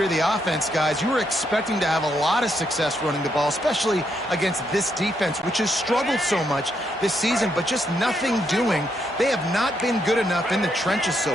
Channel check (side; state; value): both; normal; correlation 0.77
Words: the offense, guys. You were expecting to have a lot of success running the ball, especially against this defense, which has struggled so much this season, but just nothing doing. They have not been good enough in the trenches so